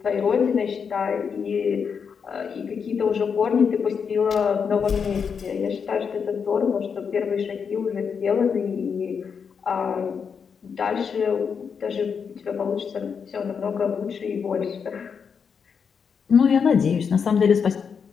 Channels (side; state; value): right; quieter; 6.4 dB